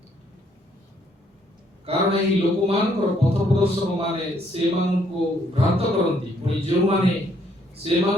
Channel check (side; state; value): both; normal; correlation 0.69